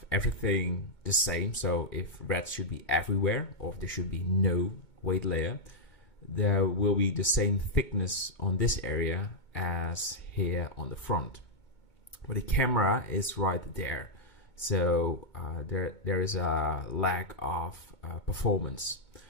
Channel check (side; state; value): right; late; 2.2 ms